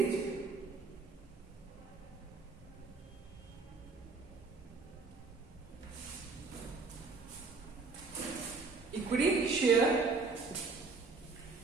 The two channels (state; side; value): quieter; left; 4.2 dB